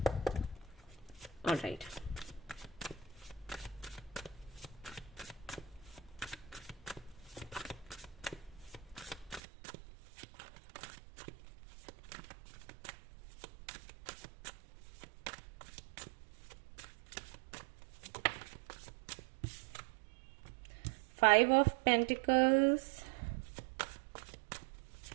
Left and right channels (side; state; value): left; drops out; at 9.4 s